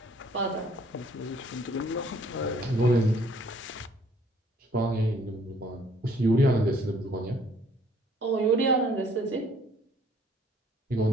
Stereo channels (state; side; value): normal; both; correlation 0.60